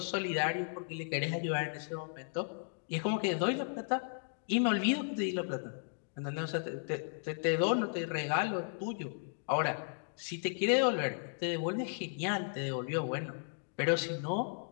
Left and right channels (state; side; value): silent; right; digital silence